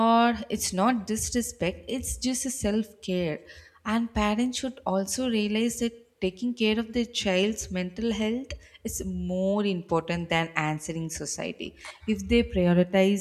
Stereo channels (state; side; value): identical; both; correlation 1.00